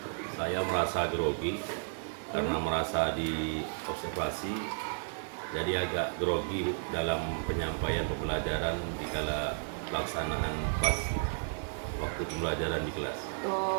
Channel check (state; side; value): silent; left; 56 dB below the other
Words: saya merasa grogi karena merasa di observasi, jadi agak grogi dalam penyampaian pembelajaran di kala pelaksanaan pas waktu pembelajaran di kelas.